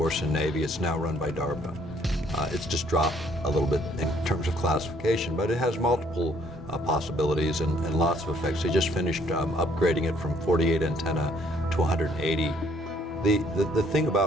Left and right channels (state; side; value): normal; both; correlation 0.64